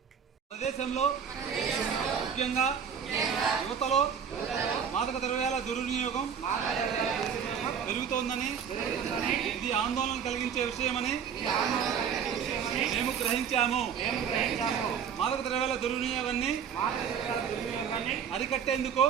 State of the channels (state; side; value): quieter; left; 7.5 dB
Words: ముఖ్యంగా యువతలో మాదక ద్రవ్యాల దుర్వినియోగం పెరుగుతోందని, ఇది ఆందోళన కలిగించే విషయమని మేము గ్రహించాము. మాదక ద్రవ్యాల దుర్వినియోగాన్ని అరికట్టేందుకు